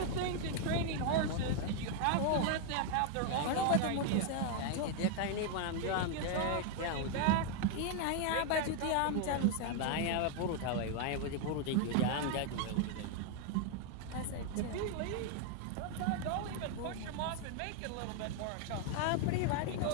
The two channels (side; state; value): both; different; correlation 0.01